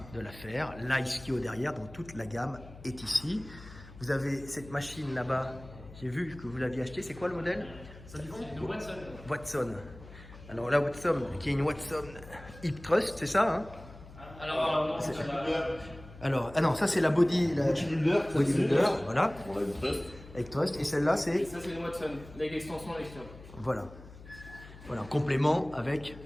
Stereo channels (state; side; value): noise; left; hum, 18 dB below the sound